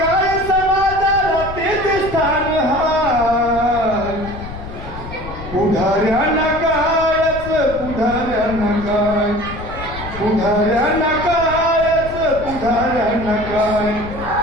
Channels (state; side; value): noise; left; rumble, 11 dB below the sound